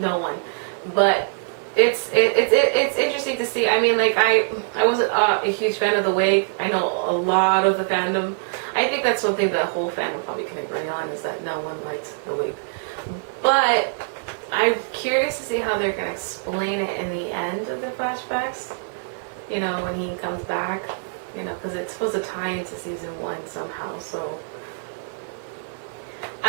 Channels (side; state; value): left; silent; digital silence